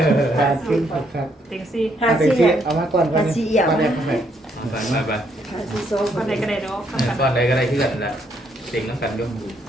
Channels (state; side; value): normal; both; correlation 0.72